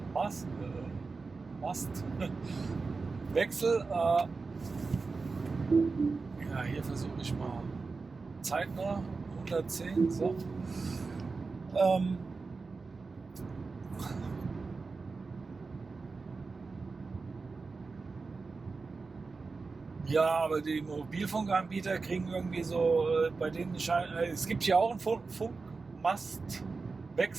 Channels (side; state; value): left; quieter; 4.2 dB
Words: Hier versuche ich mal zeitnah 110. So. Ja, aber die Mobilfunkanbieter kriegen irgendwie so, bei denen es gibt ja auch einen